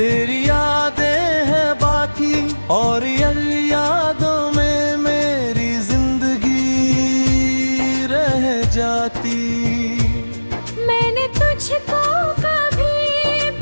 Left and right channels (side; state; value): both; inverted; correlation -1.00